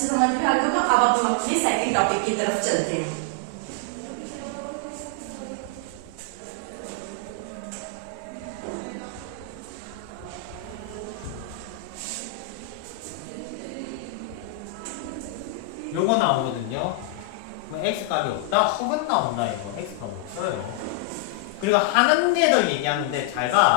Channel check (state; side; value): different; both; correlation 0.00